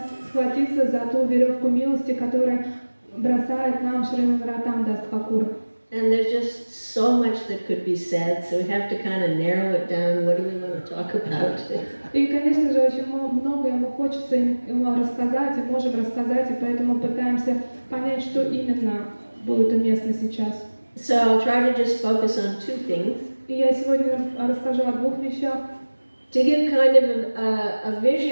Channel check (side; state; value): both; inverted; correlation -1.00